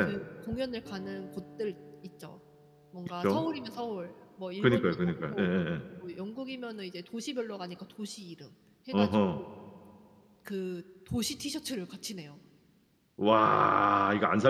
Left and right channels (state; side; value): identical; both; correlation 1.00